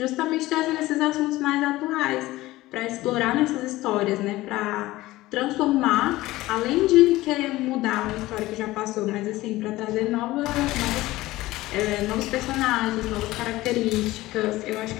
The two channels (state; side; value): quieter; right; 17.8 dB